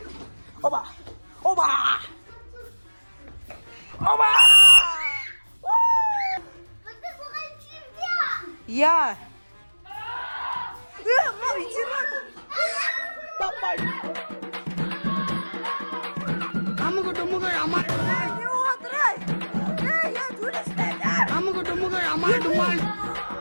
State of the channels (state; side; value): inverted; both; correlation -1.00